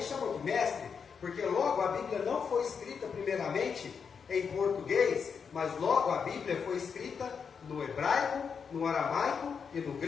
chamou de mestre, porque logo a Bíblia não foi escrita primeiramente em português, mas logo a Bíblia foi escrita no hebraico, no aramaico e no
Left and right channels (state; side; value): quieter; right; 6.3 dB